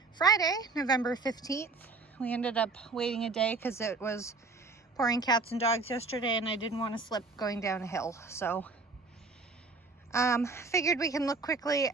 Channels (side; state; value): left; quieter; 3.9 dB